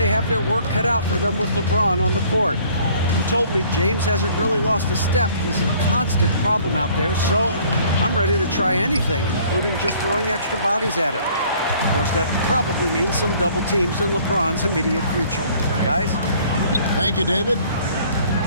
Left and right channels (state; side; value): inverted; both; correlation -0.56